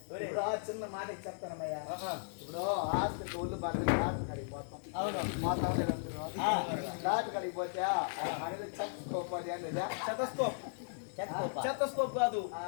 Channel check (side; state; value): right; silent; digital silence